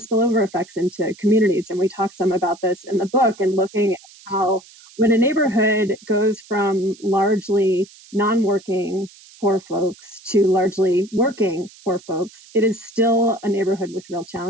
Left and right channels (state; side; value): noise; right; hiss, 23 dB below the sound